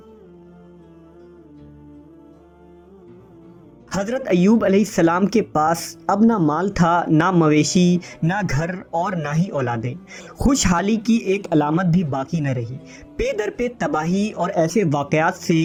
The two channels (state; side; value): identical; both; correlation 1.00